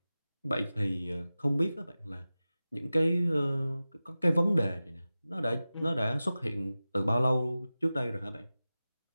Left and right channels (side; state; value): both; inverted; correlation -0.95